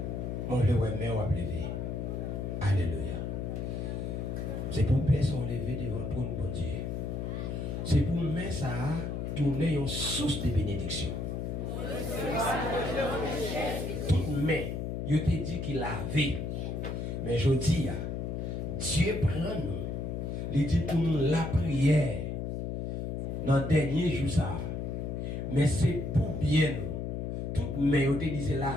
Mon Dieu, ouais, mais on va lever. Alléluia. C'est pour me faire lever devant toi, mon Dieu. C'est pour me mettre ça tourner une source de bénédiction. Toute main, je te dis qu'il avait. Mais je dis, Dieu prend nous. Il dit pour nous la prière. Dans le dernier jour, ça. Mais c'est pour bien nous. Toute main, je te dis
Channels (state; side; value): noise; left; hum, 3 dB below the sound